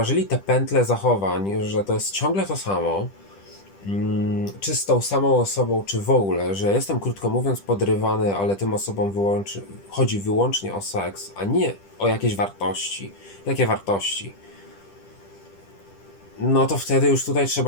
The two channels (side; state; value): right; late; 10 ms